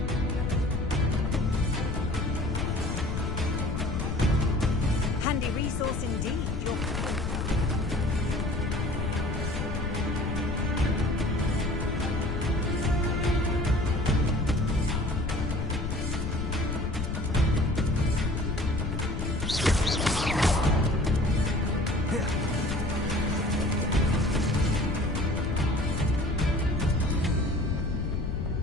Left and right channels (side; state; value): left; noise; rumble, 2 dB below the sound